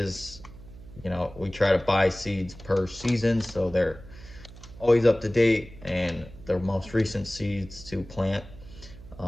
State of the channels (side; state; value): right; noise; hum, 18 dB below the sound